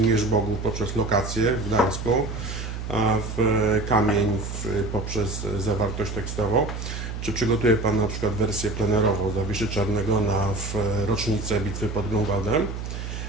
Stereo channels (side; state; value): right; noise; hum, 6 dB below the sound